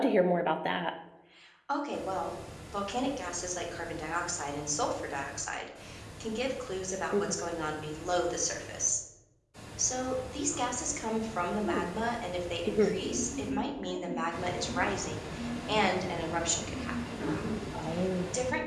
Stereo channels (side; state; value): both; identical; correlation 1.00